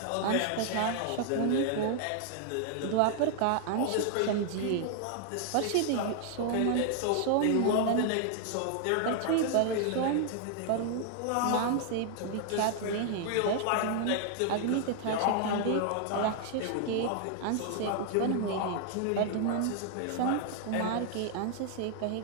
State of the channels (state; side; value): different; both; correlation 0.00